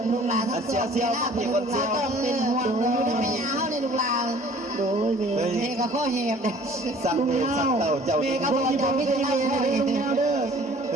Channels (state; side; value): normal; both; correlation 0.52